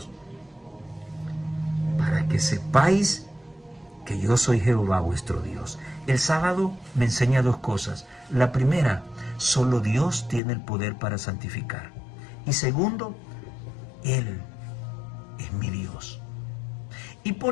para que sepáis que yo soy Jehová vuestro Dios. El sábado me enseña dos cosas. La primera, solo Dios tiene el poder para santificar. Y segundo, Él es mi Dios. Y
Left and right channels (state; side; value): drops out; right; at 10.4 s